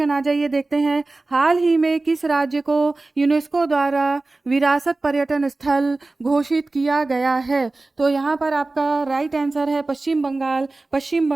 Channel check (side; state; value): left; quieter; 3.2 dB